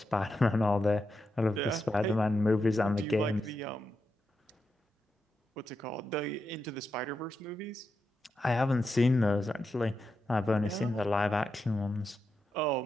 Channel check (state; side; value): normal; both; correlation 0.86